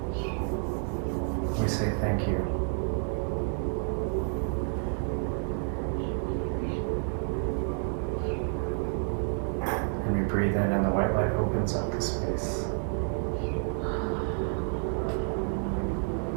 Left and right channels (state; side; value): silent; left; 58 dB below the other